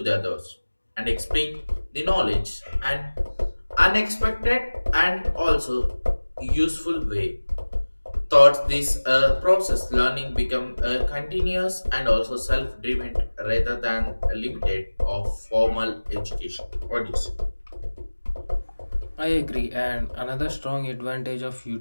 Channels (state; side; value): inverted; both; correlation -1.00